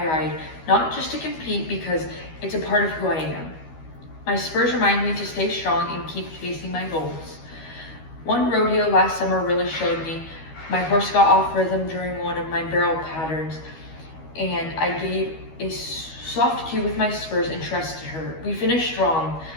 ride, not just to compete, because it's a part of who I am. My spurs remind me to stay strong and keep chasing my goals. One rodeo last summer really showed me. My horse got off rhythm during one of my barrel patterns, and I gave a soft cue with my spurs and trusted her. We finished strong.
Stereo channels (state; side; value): late; right; 13 ms